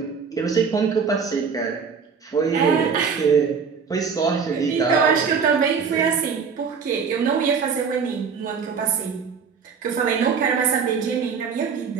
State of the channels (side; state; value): left; quieter; 6.0 dB